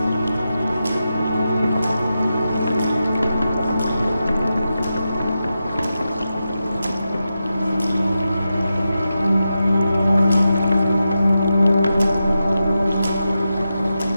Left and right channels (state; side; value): inverted; both; correlation -0.90